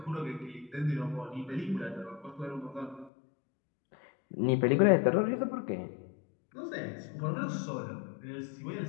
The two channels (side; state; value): right; drops out; at 3.1 s